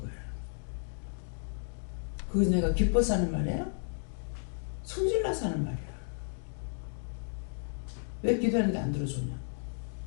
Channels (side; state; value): right; silent; digital silence